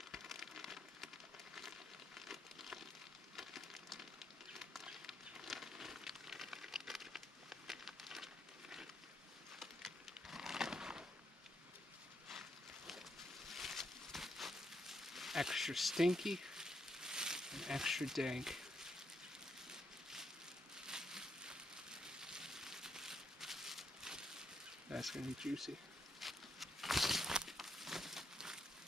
Extra stinky and extra dank. That's gonna be juicy.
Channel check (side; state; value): both; normal; correlation 0.78